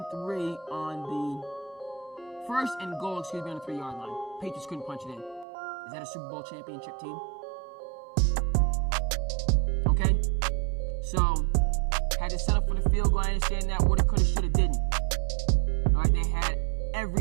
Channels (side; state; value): left; drops out; at 5.5 s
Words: goal, on the 3-yard line. Patriots couldn't punch it in. Is that a Super Bowl championship team? Okay? So, had to set up for the field goal. I understand that. Woulda, coulda, shoulda, didn't. All right, they had